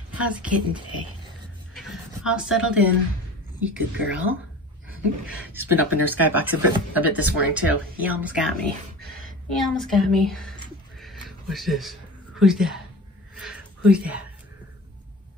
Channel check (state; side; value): normal; both; correlation 0.36